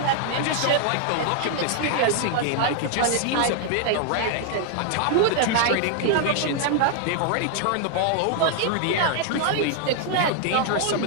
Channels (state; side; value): different; both; correlation 0.00